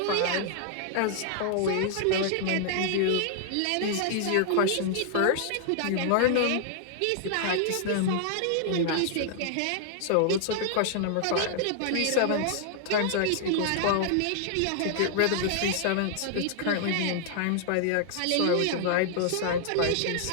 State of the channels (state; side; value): different; both; correlation 0.00